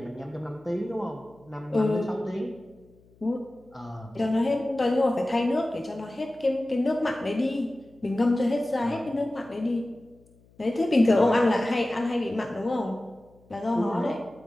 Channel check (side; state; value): left; noise; hum, 29 dB below the sound